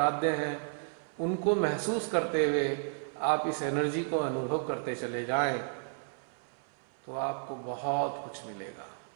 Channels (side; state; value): left; silent; 56 dB below the other